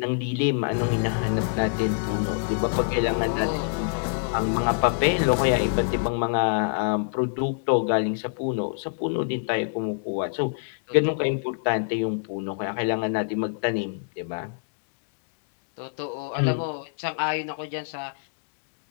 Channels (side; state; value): right; silent; digital silence